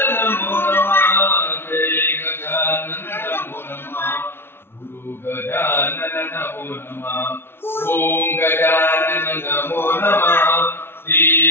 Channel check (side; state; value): right; late; 0.11 ms